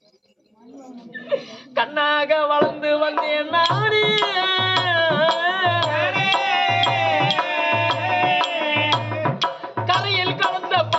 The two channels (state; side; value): identical; both; correlation 1.00